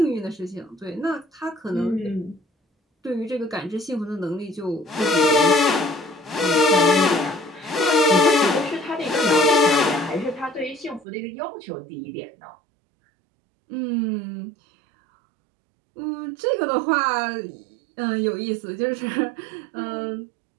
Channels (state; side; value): drops out; left; at 11.1 s